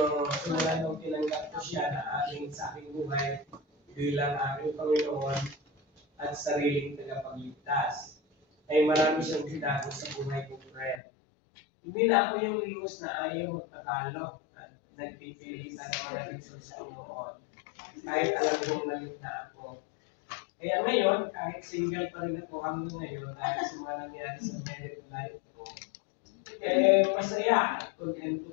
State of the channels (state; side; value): drops out; right; at 11.0 s